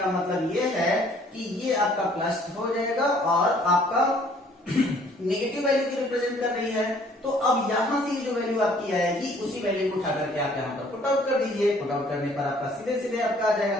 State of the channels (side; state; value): both; normal; correlation 0.59